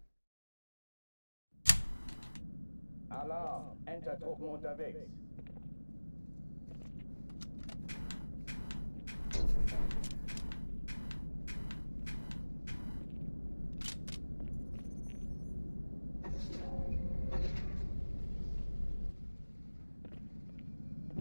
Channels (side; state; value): both; inverted; correlation -1.00